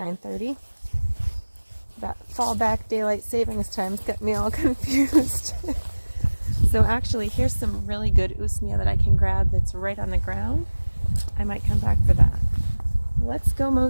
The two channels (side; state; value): both; inverted; correlation -1.00